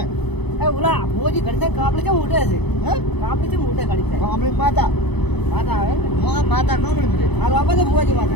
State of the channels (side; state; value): right; late; 0.98 ms